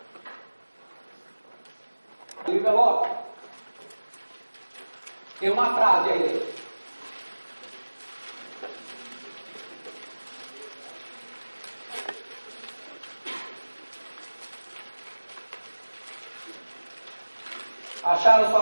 O envelope tem uma frase aí dentro. Acharam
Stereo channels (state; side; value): inverted; both; correlation -1.00